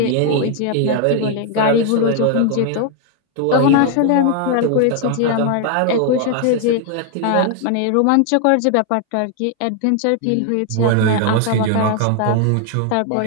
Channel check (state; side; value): different; both; correlation 0.00